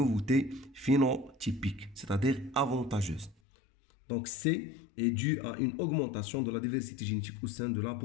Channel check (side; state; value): right; drops out; at 3.4 s